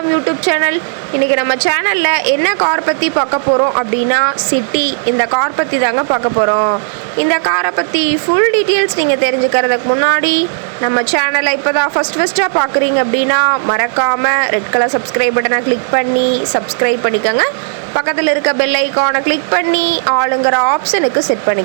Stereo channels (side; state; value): left; silent; digital silence